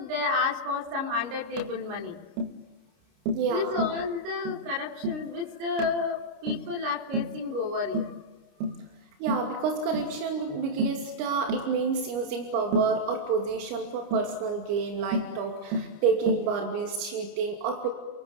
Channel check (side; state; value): left; late; 29 ms